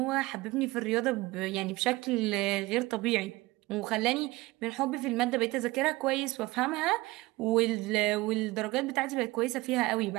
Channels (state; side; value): quieter; left; 20.7 dB